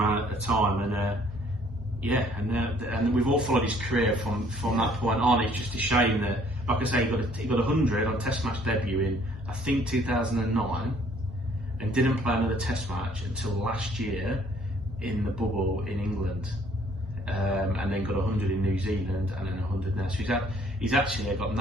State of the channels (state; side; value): normal; both; correlation 0.61